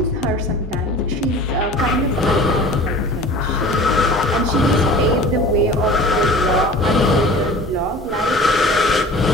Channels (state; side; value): normal; both; correlation 0.41